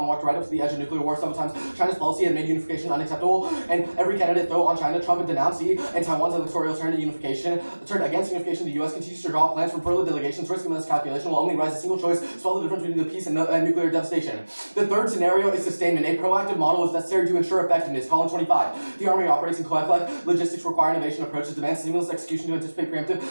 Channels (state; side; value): inverted; both; correlation -1.00